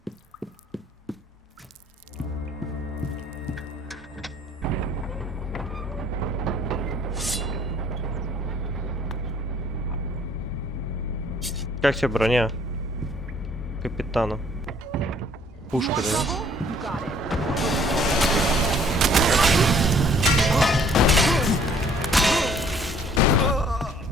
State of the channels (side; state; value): both; normal; correlation 0.58